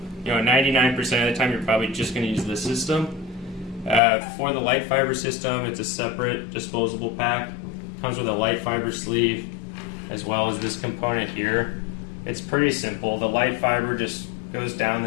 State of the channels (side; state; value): right; drops out; at 4.0 s